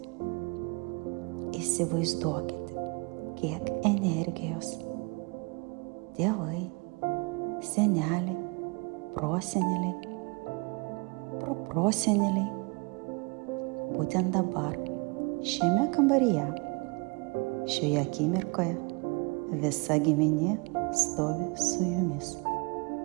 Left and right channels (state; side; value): quieter; left; 29.9 dB